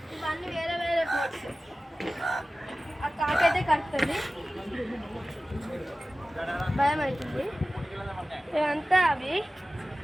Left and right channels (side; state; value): both; normal; correlation 0.96